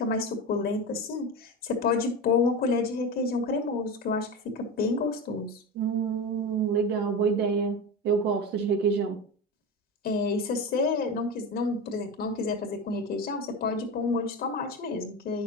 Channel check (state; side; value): normal; both; correlation 0.23